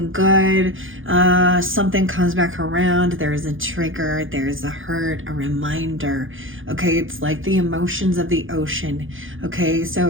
good, something comes back around. There's a trigger. There's a hurt, a reminder. Okay, it's like the emotions of the ocean. Okay,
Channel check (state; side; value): late; left; 0.58 ms